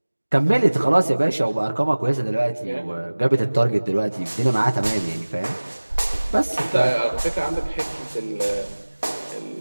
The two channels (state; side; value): inverted; both; correlation -1.00